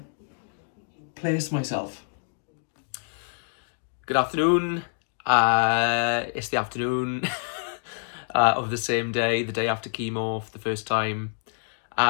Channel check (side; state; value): right; silent; digital silence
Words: place myself. Good afternoon. It's the afternoon of the same day, the day after chemo for the first time.